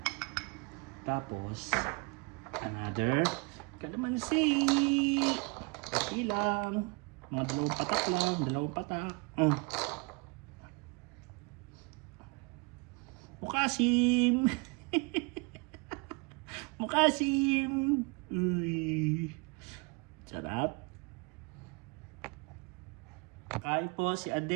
Tapos, another kalamansi. Konti lang. Mga dalawang patak lang. Dalawang patak. Mukasim. Mukasim. Uy. Sarap. Kain po si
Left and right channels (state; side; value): quieter; left; 29.5 dB